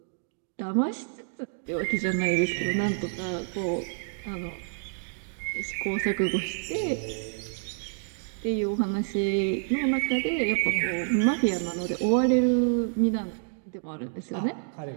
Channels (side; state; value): left; silent; digital silence